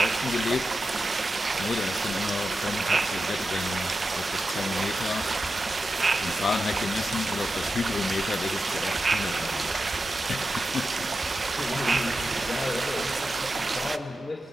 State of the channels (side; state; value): both; normal; correlation 0.91